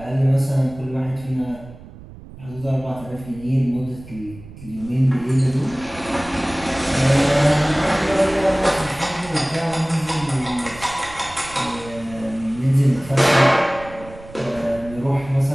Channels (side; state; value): right; noise; rumble, 17 dB below the sound